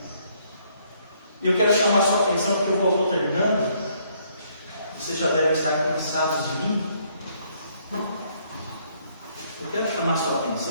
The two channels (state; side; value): inverted; both; correlation -0.68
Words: E eu quero chamar a sua atenção, porque eu vou terminando. Vocês já devem estar cansados de mim. Eu quero chamar a sua